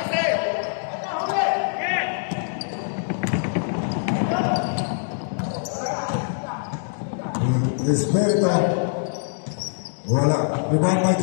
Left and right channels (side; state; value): right; silent; digital silence